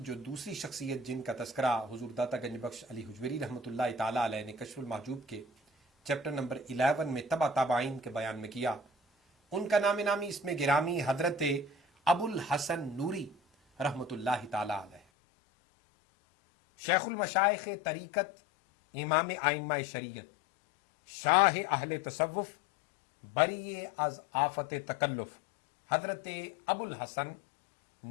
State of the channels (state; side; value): drops out; right; at 15.0 s